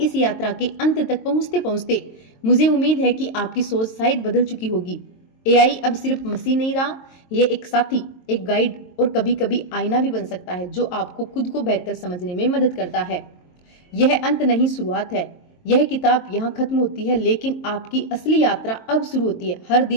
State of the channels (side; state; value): right; late; 22 ms